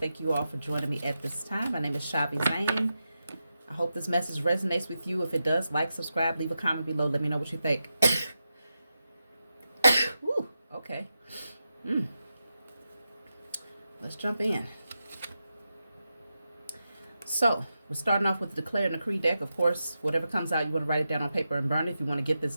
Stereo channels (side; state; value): both; inverted; correlation -0.89